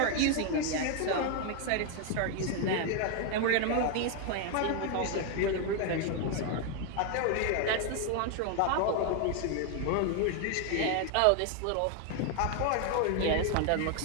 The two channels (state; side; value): different; both; correlation 0.01